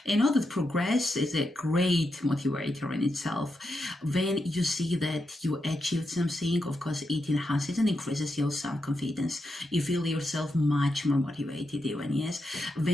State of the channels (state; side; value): normal; both; correlation 0.85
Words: And all that progress is a great motivator in itself. When you see that you achieved something, of course, it enhances and increases your self-confidence. You feel yourself much more motivated even, yes.